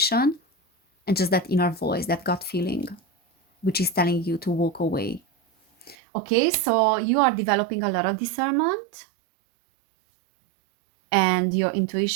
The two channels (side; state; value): left; drops out; at 6.0 s